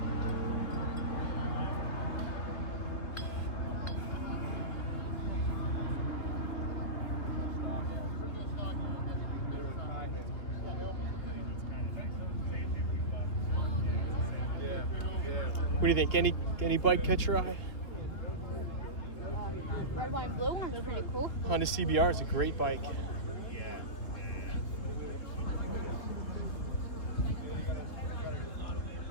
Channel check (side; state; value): right; late; 3.4 ms